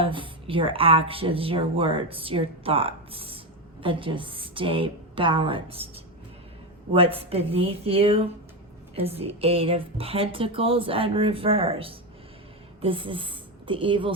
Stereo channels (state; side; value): normal; both; correlation 0.12